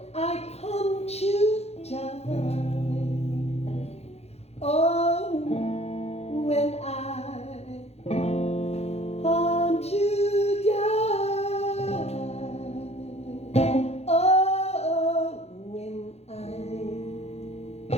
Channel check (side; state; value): right; late; 0.31 ms